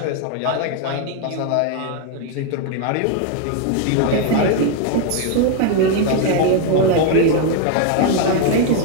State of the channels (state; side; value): different; both; correlation 0.01